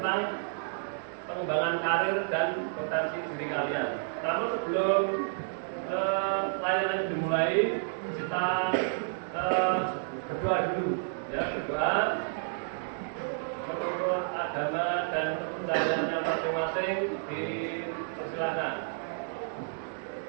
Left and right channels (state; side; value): silent; left; digital silence